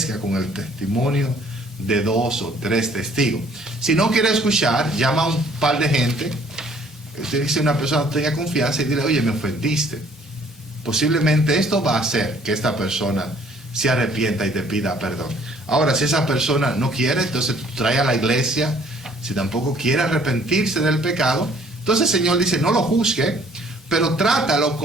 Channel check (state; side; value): normal; both; correlation 0.59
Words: con el testimonio de 2 o 3 testigos. Si no quiere escuchar, llama a un par de gente. Usted dice, una persona tenga confianza y dile, oye, me ofendiste. Posiblemente esto va a hacer que esta persona se arrepienta y te pida perdón. Ahora, si esa persona no quiere, entonces trae a la iglesia. Si tampoco quiere arrepentirse del pecado, entonces el Señor dice, no lo juzgue, pero trátalo